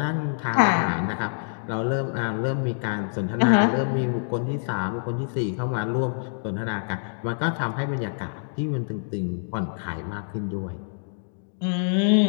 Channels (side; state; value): right; silent; digital silence